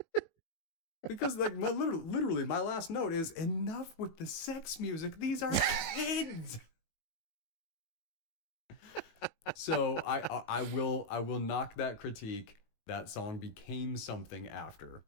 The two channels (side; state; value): right; late; 19 ms